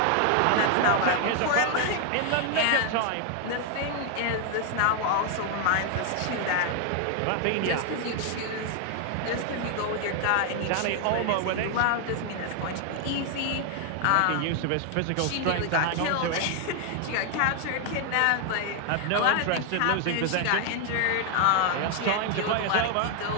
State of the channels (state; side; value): different; both; correlation 0.00